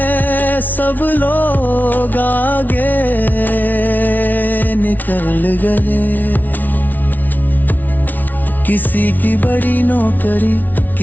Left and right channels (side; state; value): right; late; 0.082 ms